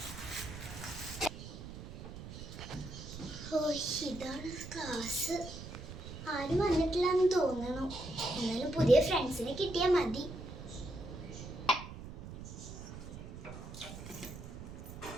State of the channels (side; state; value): right; noise; rumble, 11 dB below the sound